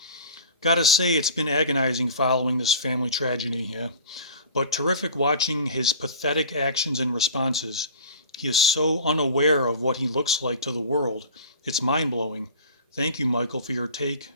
Gotta say, it's been agonizing following this family tragedy here, but terrific watching his pathetic actions and responses. He is so unaware of what he looks like to the world. It's mind-blowing. Thank you, Michael, for your take.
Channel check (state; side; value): inverted; both; correlation -0.40